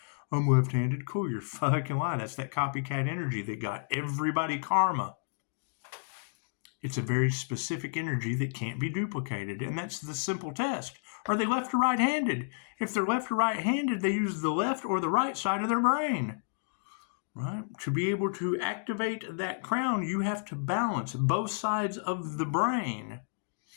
I'm left-handed. Cool. You're fucking lying. That's that copycat energy that got everybody karma. It's a very specific energy that can't be duplicated, and that's the simple test. Are they left or right-handed? If they're left or right-handed, they use the left or the right side of their brain. Right? To be able to activate that crown, you have to balance both sides of the brain.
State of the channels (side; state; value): right; silent; digital silence